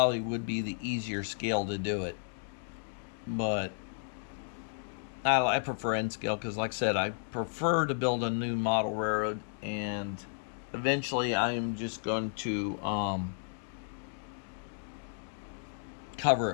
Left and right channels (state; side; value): silent; right; digital silence